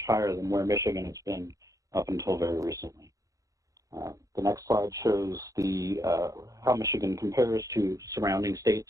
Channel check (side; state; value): left; late; 0.16 ms